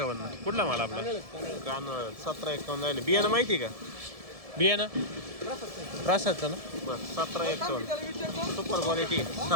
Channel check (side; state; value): left; late; 1.7 ms